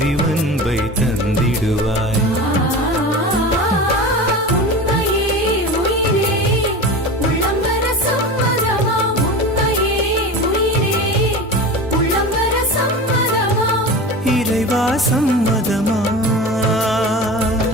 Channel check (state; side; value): normal; both; correlation 0.30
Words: தந்திடுவாய். உன்னையே உயிரே உள்ளம் வர சம்மதமா, உன்னையே உயிரே உள்ளம் வர சம்மதமா, இறைவா சம்மதமா.